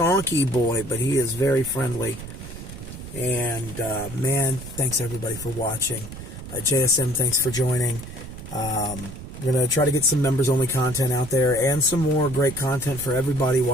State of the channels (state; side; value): noise; right; rumble, 12 dB below the sound